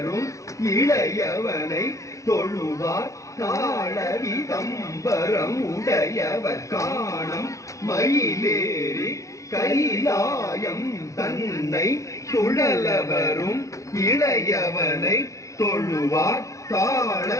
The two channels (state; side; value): late; right; 0.15 ms